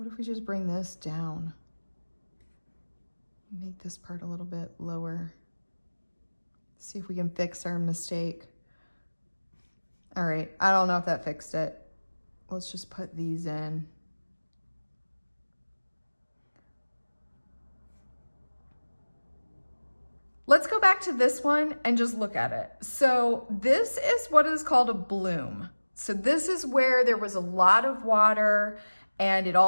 if we just bring this down? Make this part a little bit lower. See if we can fix our mistake. All right, I don't know if that fixed it. Let's just put these in. Let's go back to this one and just look at it. So this is what is called a bloom. So this is where there was a lot of water and it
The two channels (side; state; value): both; inverted; correlation -1.00